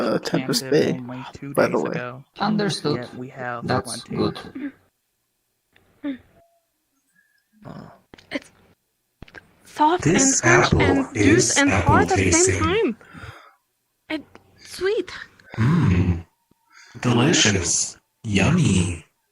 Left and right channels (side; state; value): both; identical; correlation 1.00